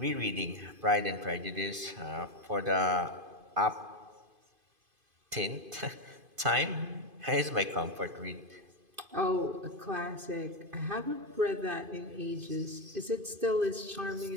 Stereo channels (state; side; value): late; left; 2.5 ms